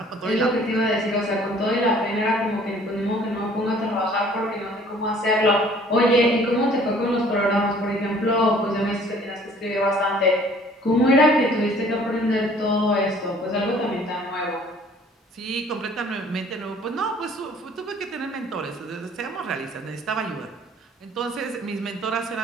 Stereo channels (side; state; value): both; normal; correlation 0.55